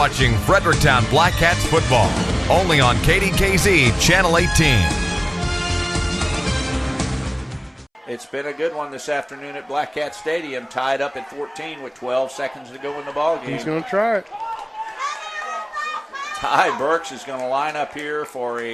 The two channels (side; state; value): both; identical; correlation 1.00